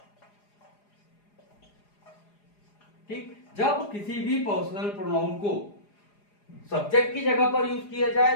ठीक, जब किसी भी पर्सनल प्रोनाउन को सब्जेक्ट की जगह पर यूज किया जाए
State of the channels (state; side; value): late; right; 4.9 ms